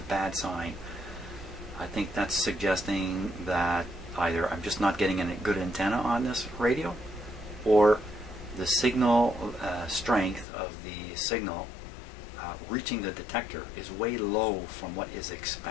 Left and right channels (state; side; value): drops out; right; at 10.5 s